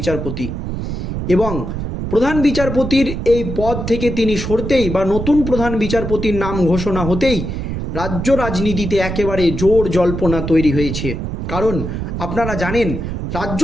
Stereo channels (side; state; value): right; noise; rumble, 4 dB below the sound